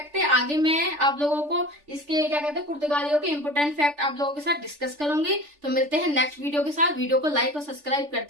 थे। आगे मैं आप लोगों को इसके क्या कहते हैं, पुर्तगालियों के इंपोर्टेंट फैक्ट आप लोगों के साथ डिस्कस करूंगी। तो मिलते हैं नेक्स्ट वीडियो के साथ। वीडियो को लाइक और सब्सक्राइब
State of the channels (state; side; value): late; left; 3.4 ms